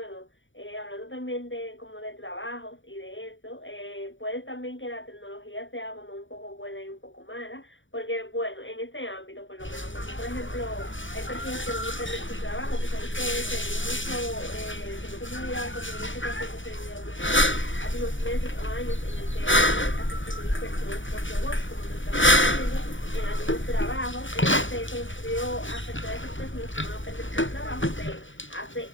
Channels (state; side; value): late; right; 0.56 ms